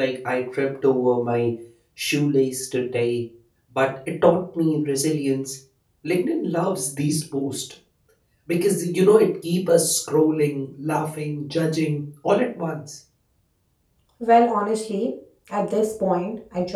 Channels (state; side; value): identical; both; correlation 1.00